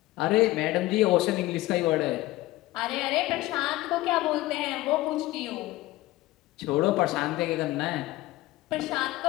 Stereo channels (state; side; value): quieter; right; 17.6 dB